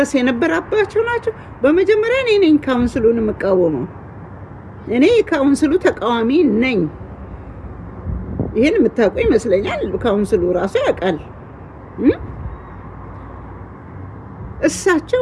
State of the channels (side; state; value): both; identical; correlation 1.00